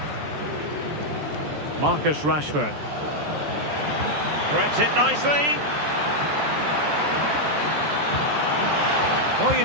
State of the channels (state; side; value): late; left; 14 ms